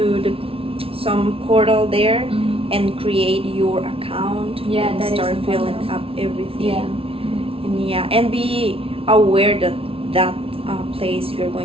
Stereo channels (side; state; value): left; late; 0.26 ms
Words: some portal there Mhm. and create your account. Yeah, and that is start filling important. up everything. Yeah. And be aware that place you're